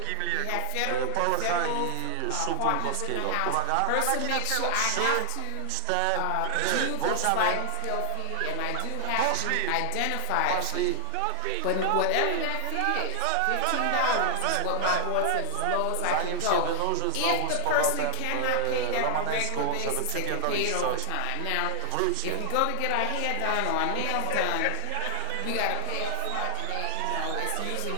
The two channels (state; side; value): different; both; correlation 0.00